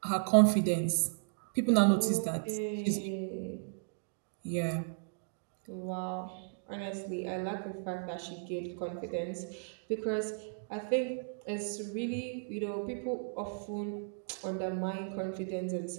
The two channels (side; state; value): left; silent; digital silence